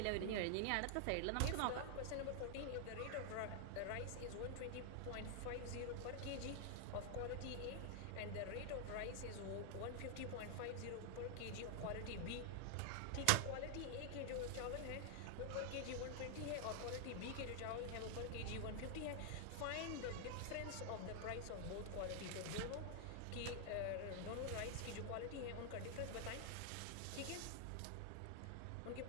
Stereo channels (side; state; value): both; different; correlation 0.00